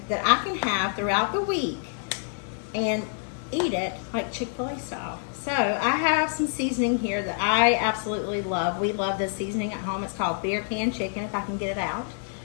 that I can have throughout the week and eat it like Chick-fil-A style. So I have some seasoning here that I absolutely love. We love this seasoning at home. It's called beer can chicken, if I can get it out.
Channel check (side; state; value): right; silent; digital silence